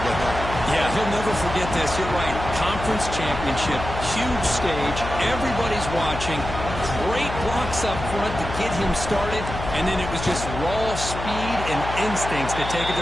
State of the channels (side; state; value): left; noise; hum, 7 dB below the sound